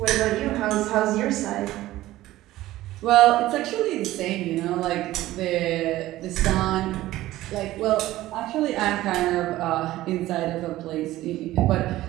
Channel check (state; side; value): quieter; left; 15.9 dB